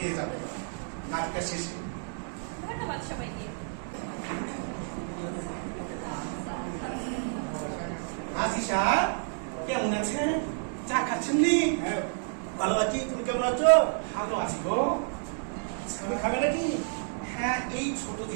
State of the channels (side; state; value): left; silent; 58 dB below the other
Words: যাবেন নাচটা শেষে। ধন্যবাদ সবাইকে। আজিশা কেমন আছেন? চা খাচ্ছেন নি? ভালো আছি, তুমি কেমন আছো? ভালো আছি গো। তুমি খাবে নাকি? হ্যাঁ, এই ছোট